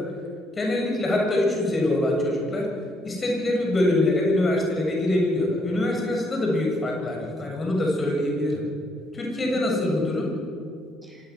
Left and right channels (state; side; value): normal; both; correlation 0.73